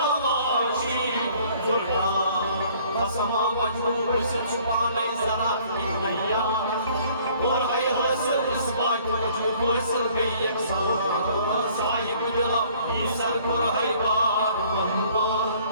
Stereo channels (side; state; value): both; inverted; correlation -0.57